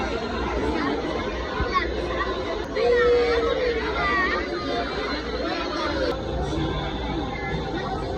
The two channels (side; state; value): both; identical; correlation 1.00